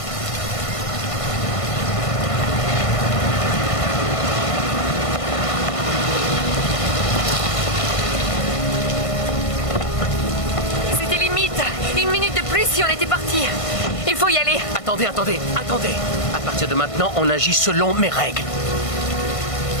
si on était parti. Il faut y aller. Attendez. À partir de maintenant, on agit selon mes règles.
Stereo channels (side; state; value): right; late; 1.5 ms